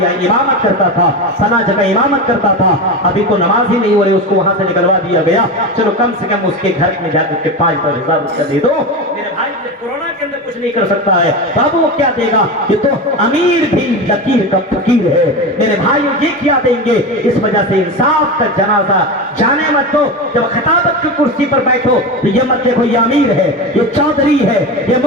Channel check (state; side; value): normal; both; correlation 0.22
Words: یہاں امامت کرتا تھا، سنا جگہ امامت کرتا تھا، ابھی تو نماز ہی نہیں ہو رہی، اس کو وہاں سے نکلوا دیا گیا، چلو کم سے کم اس کے گھر میں جا کر کے 5,000 روپیہ دے دو۔ میرے بھائی کورونا کے اندر کچھ نہیں کر سکتا ہے، بابو وہ کیا دے گا؟ یہ تو امیر بھی لکیر کا فقیر ہے۔ میرے بھائی یہ کیا دیں گے؟ اس وجہ سے انصاف کا جنازہ جانے مت دو۔ جب خطابت کی کرسی پر بیٹھو تو یہ مت دیکھو یہ امیر ہے، یہ چودھری ہے، یہ